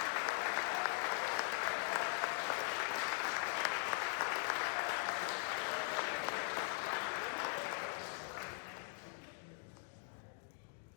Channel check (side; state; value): right; silent; 50 dB below the other